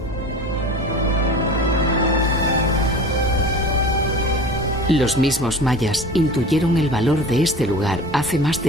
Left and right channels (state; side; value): normal; both; correlation 0.36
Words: Los mismos mayas intuyeron el valor de este lugar hace más